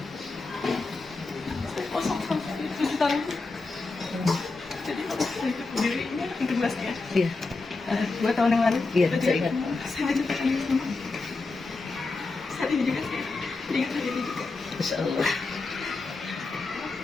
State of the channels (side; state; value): right; quieter; 3.7 dB